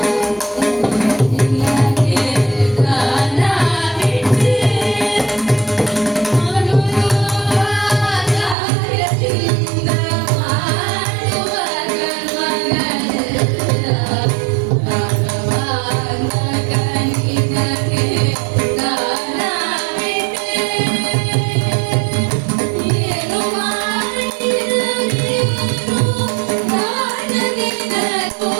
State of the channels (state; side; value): drops out; left; at 8.6 s